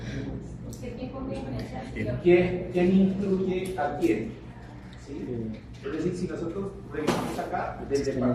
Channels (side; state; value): both; identical; correlation 1.00